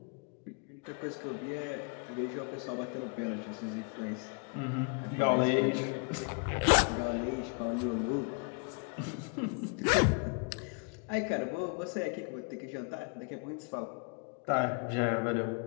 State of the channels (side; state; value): right; quieter; 36.8 dB